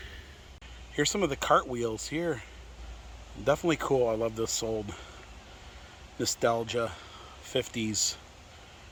Here's some of the cartwheels here. Definitely cool. I love this old nostalgia 50s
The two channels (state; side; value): identical; both; correlation 1.00